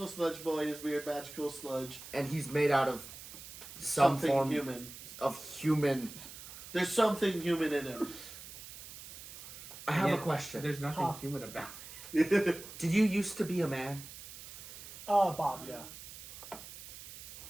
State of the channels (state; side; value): noise; right; hiss, 14 dB below the sound